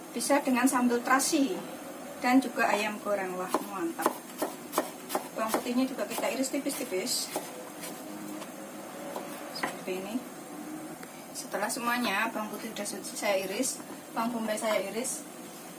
bisa dengan sambal terasi. Dan juga ayam goreng, wah mantap. Bawang putihnya juga kita iris tipis-tipis seperti ini. Setelah semuanya bawang putih sudah saya iris, bawang bombay saya iris,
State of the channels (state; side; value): identical; both; correlation 1.00